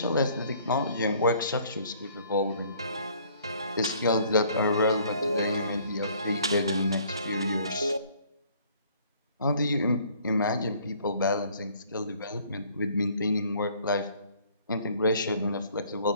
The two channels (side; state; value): both; inverted; correlation -0.59